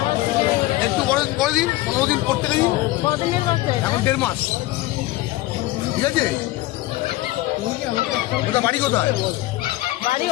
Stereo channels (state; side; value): quieter; right; 17.6 dB